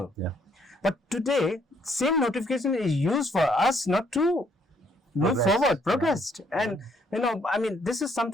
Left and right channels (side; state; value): both; normal; correlation 0.68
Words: Yeah. But today, same notification is used for us not to move forward, progress. And this is